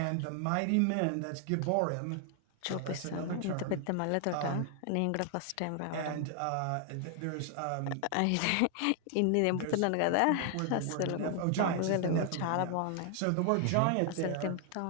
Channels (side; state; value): both; different; correlation 0.00